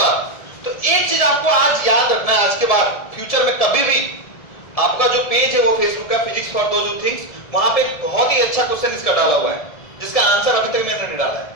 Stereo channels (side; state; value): right; late; 1.7 ms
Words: तो एक चीज आपको आज याद रखना है, आज के बाद फ्यूचर में कभी भी आपका जो पेज है वो फेसबुक का physics for those who thinks, वहां पे बहुत ही अच्छा क्वेश्चन इसका डाला हुआ है जिसका आंसर अभी तक मैंने नहीं डाला है।